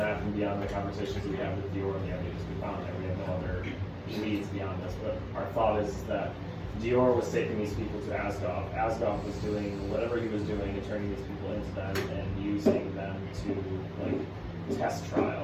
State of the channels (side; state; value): both; identical; correlation 1.00